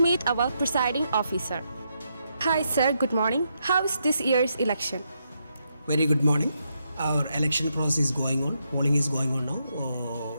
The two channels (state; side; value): inverted; both; correlation -0.80